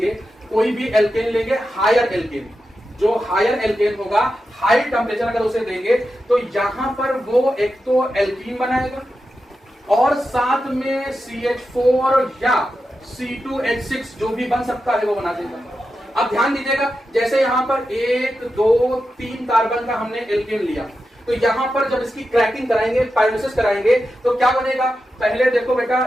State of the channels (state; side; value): normal; both; correlation 0.90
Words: कोई भी एल्केन लेंगे, हायर एल्केन, जो हायर एल्केन होगा, हाई टेम्परेचर अगर उसे देंगे तो यहां पर वो एक तो एल्कीन बनाएगा और साथ में CH4 या C2H6 जो भी बन सकता है वो बना देगा। अब ध्यान दीजिएगा, जैसे यहां पर 1 2 3 कार्बन का हमने एल्केन लिया, तो यहां पर जब इसकी क्रैकिंग कराएंगे, पायरोलिसिस कराएंगे, तो क्या बनेगा, पहले देखो